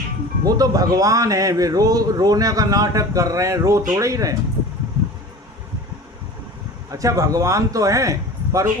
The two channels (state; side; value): normal; both; correlation 0.38